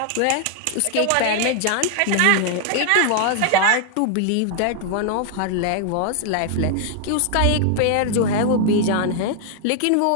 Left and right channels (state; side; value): different; both; correlation 0.00